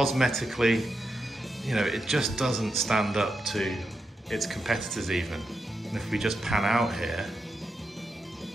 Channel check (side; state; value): both; normal; correlation 0.86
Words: you know, it just doesn't stand up to its competitors even. And if we just pan out here